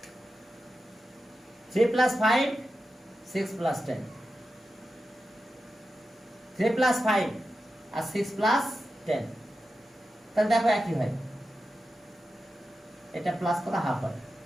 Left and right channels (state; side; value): normal; both; correlation 0.91